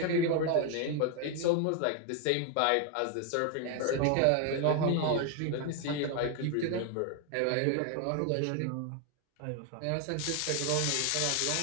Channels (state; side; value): different; both; correlation 0.01